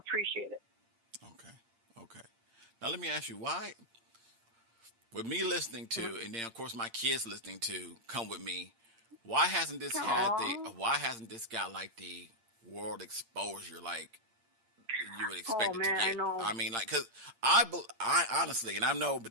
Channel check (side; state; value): left; late; 8.7 ms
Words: it. Okay. Now let me ask you, why with me listening to, and then of course my kids listening to "Come With Me," why hasn't this got like the world exposure like you would expect it to get? I mean, like, because I honestly, and I know